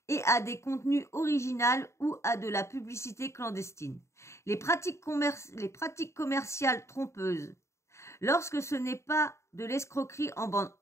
et à des contenus originaux ou à de la publicité clandestine. Les pratiques commerciales trompeuses, lorsque ce n'est pas de l'escroquerie en bande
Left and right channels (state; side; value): late; right; 0.14 ms